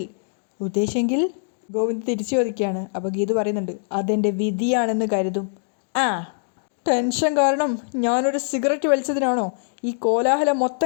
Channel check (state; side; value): silent; right; digital silence